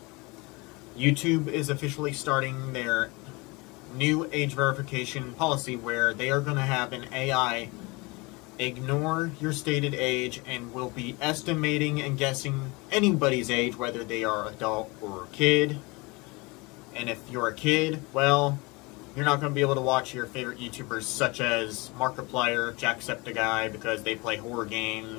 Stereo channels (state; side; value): quieter; right; 25.7 dB